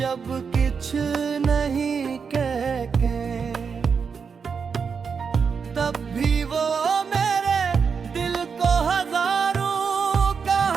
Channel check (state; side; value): quieter; left; 5.9 dB